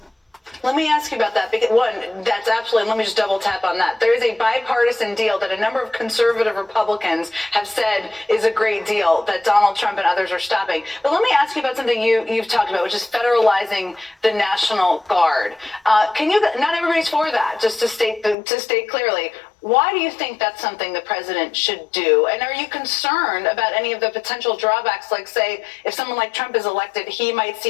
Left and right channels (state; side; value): drops out; right; at 18.4 s